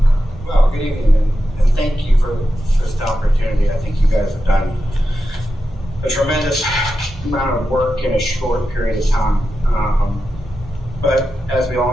Well, good evening, and thank you for this opportunity. I think you guys have done a tremendous amount of work in a short period of time. But as we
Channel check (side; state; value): both; normal; correlation 0.90